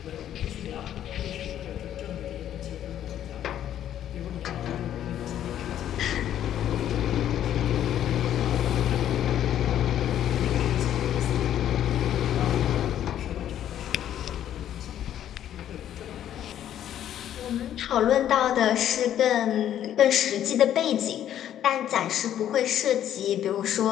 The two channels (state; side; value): quieter; right; 10.9 dB